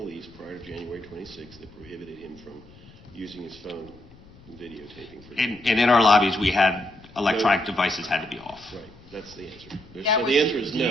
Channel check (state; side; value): noise; left; rumble, 23 dB below the sound